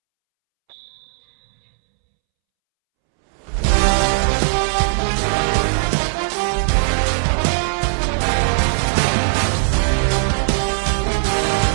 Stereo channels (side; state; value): left; silent; 67 dB below the other